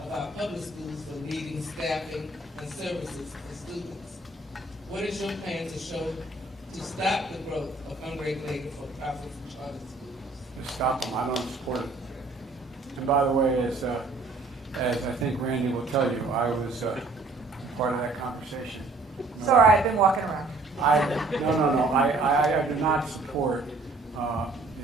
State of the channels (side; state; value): left; quieter; 3.2 dB